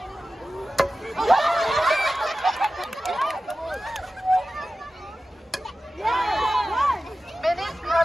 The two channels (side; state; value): both; normal; correlation 0.94